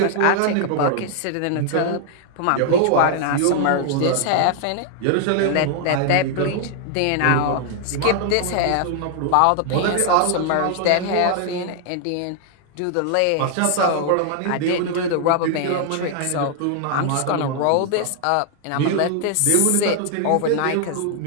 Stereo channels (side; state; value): both; different; correlation 0.00